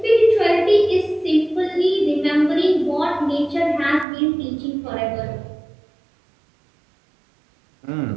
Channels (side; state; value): left; drops out; at 4.0 s